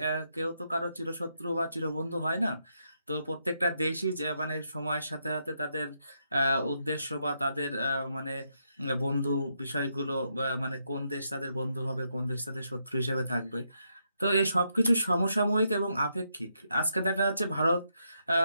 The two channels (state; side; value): inverted; both; correlation -0.80